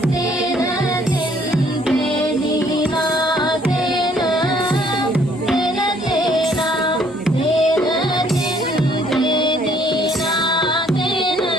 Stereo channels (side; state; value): both; normal; correlation 0.62